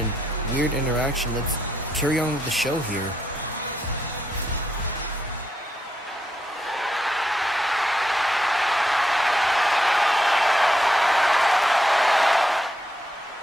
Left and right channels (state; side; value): normal; both; correlation 0.80